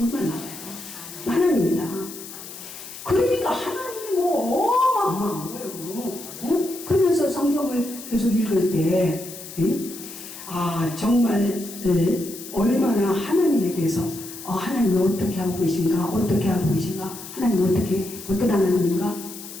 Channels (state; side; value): noise; left; hiss, 13 dB below the sound